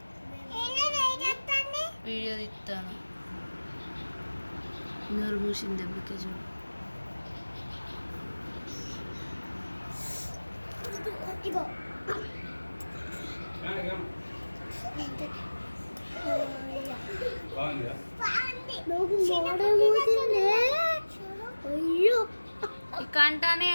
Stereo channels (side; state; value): both; inverted; correlation -1.00